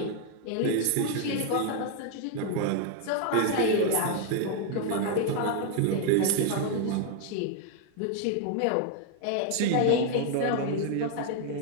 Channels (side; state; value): both; different; correlation 0.00